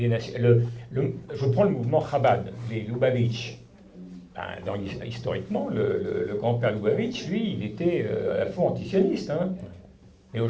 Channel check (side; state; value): both; identical; correlation 1.00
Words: nations. Je prends le mouvement Chabad, les Lubavitch. Historiquement, le grand-père Lubavitch, lui, il était à la fois antisioniste. Hein. Mais